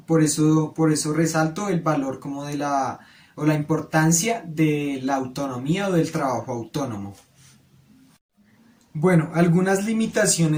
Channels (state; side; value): identical; both; correlation 1.00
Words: Por eso resalto el valor como o la importancia de la autonomía o del trabajo autónomo. Bueno, algunas